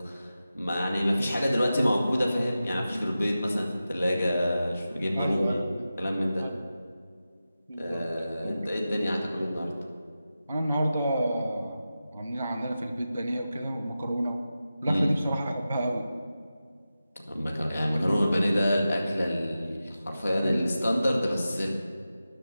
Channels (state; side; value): inverted; both; correlation -0.93